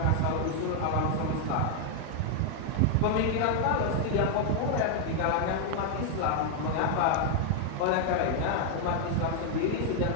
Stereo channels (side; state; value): both; different; correlation 0.00